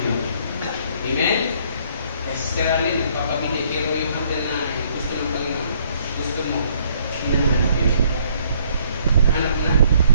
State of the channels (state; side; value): inverted; both; correlation -0.64